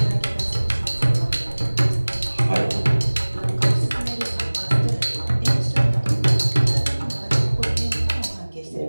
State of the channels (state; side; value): inverted; both; correlation -1.00